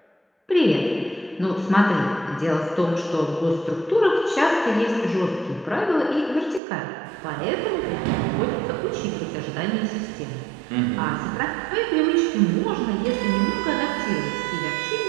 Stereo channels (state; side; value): drops out; left; at 6.6 s